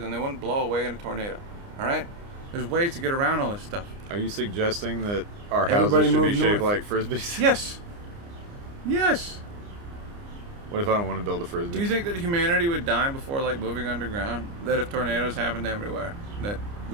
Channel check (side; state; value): left; late; 29 ms